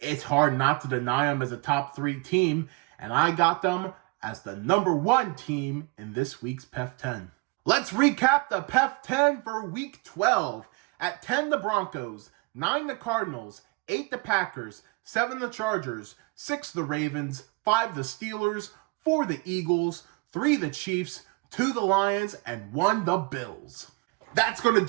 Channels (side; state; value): left; quieter; 28.3 dB